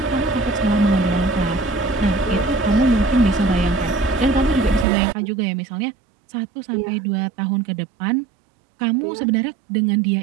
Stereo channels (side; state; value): left; drops out; at 4.9 s